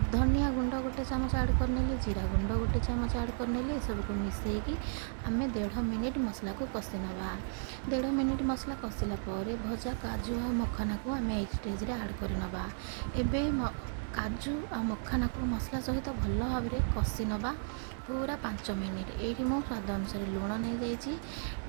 ଧନିଆ ଗୁଣ୍ଡ ଗୋଟେ ଚାମଚ ଆଡ଼୍ କରିନେଲି। ଜିରା ଗୁଣ୍ଡ ଗୋଟେ ଚାମଚ ଆଡ଼୍ କରିନେଲି। ଏସବୁକୁ ମିଶେଇକି ଆମେ 1.5 ମିନିଟ୍ ମସଲାକୁ କଷି ନେବା। 1.5 ମିନିଟ୍ ମସଲା କଷିଲା ପରେ ଭଜା କାଜୁ ଆଉ ମଖାନାକୁ ଆମେ ଏଇ ଷ୍ଟେଜ୍ରେ ଆଡ଼୍ କରିନେବା। ଏବେ କାଜୁ ଆଉ ମଖାନାକୁ ମସଲା ସହିତ ଭଲ ଭାବରେ କଷି ନେବା ପୁରା 5 ମିନିଟ୍। ଏଇଠି ମୁଁ ସ୍ୱାଦ ଅନୁସାରେ ଲୁଣ ନେଇଯାଇଛି।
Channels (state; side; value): silent; left; digital silence